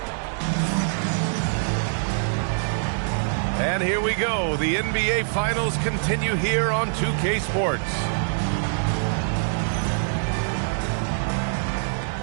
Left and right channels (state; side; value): silent; left; digital silence